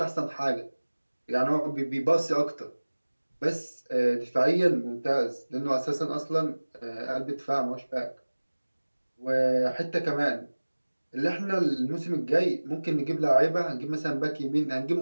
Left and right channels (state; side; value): inverted; both; correlation -1.00